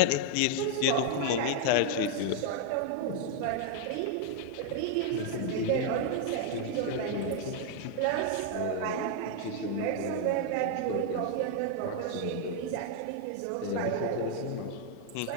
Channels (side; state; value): both; different; correlation 0.00